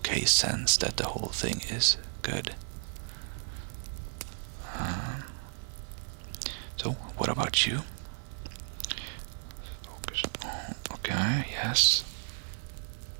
sense that the whole thing is good. So, what about you? Focus on, okay, yes.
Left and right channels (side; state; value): left; silent; digital silence